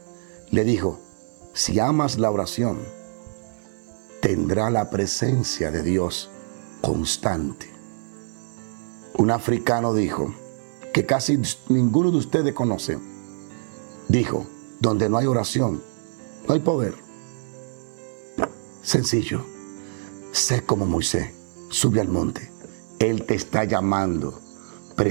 le dijo, si amas la oración, tendrá la presencia de Dios constante. Un africano dijo, que casi ninguno de ustedes conoce, dijo, donde no hay oración, no hay poder. Sencillo, sé como Moisés, sube al monte, Él te está llamando,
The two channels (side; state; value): left; silent; digital silence